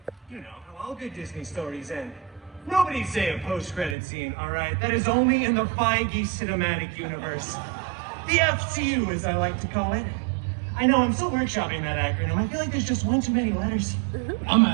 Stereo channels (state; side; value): drops out; left; at 4.0 s